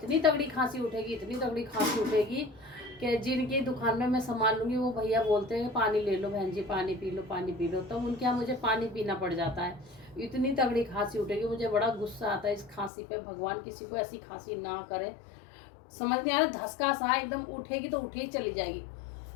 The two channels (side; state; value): right; drops out; at 12.9 s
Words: तगड़ी खांसी उठेगी, इतनी तगड़ी खांसी उठेगी कि जिनकी दुकान में मैं सामान लूँगी वो भैया बोलते हैं पानी ले लो बहन जी, पानी पी लो, पानी पी लो। तो उनके यहाँ मुझे पानी पीना पड़ जाता है, इतनी तगड़ी खांसी उठेगी। मुझे बड़ा गुस्सा आता है इस खांसी पे, भगवान किसी को ऐसी खांसी ना करे। समझ नहीं आ रहा, धसका सा एकदम, उठेगी तो उठे ही चली जाएगी।